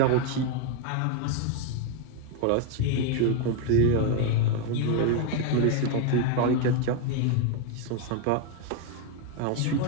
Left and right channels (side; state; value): both; different; correlation 0.01